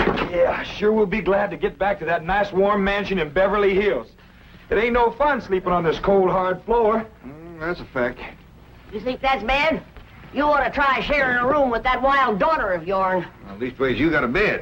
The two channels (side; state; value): both; identical; correlation 1.00